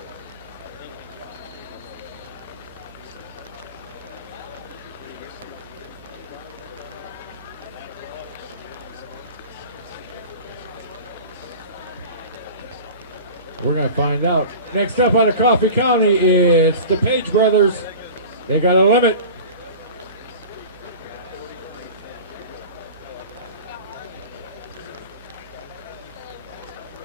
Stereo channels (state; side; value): inverted; both; correlation -0.37